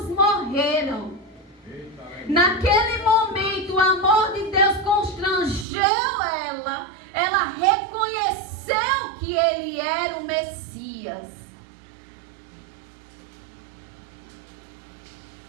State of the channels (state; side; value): drops out; left; at 5.7 s